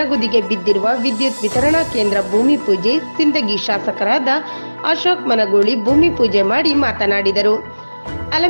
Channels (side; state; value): both; inverted; correlation -1.00